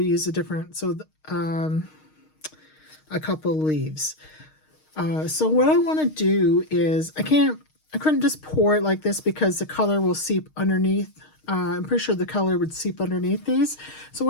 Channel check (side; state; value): right; late; 6.5 ms